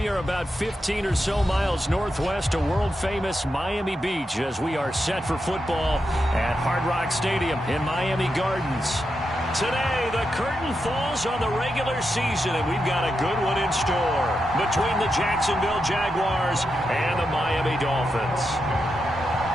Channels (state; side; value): normal; both; correlation 0.86